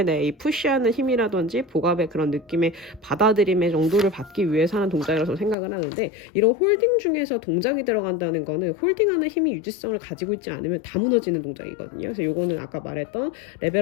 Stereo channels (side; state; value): right; drops out; at 5.6 s